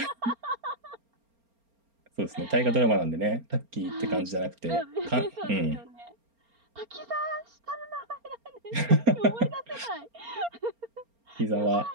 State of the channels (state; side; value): late; left; 4.3 ms